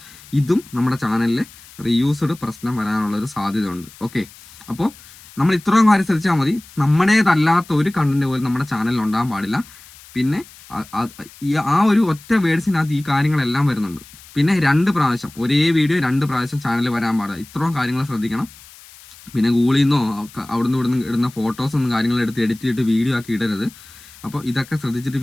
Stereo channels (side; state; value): left; noise; hiss, 21 dB below the sound